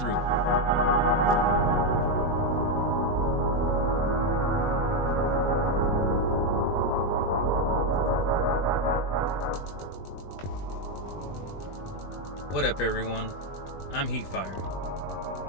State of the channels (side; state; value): right; late; 20 ms